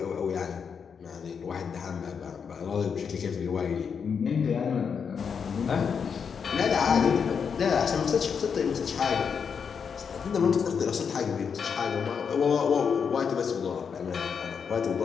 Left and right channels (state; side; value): quieter; right; 6.5 dB